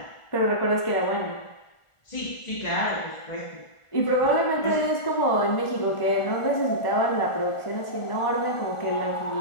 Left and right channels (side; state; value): right; late; 1.4 ms